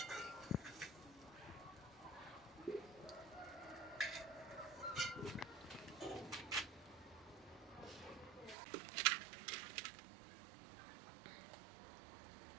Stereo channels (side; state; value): left; drops out; at 8.6 s